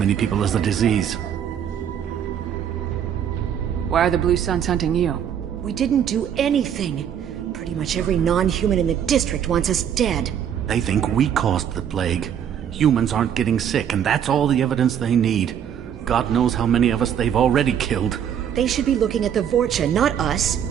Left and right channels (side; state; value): left; quieter; 9.0 dB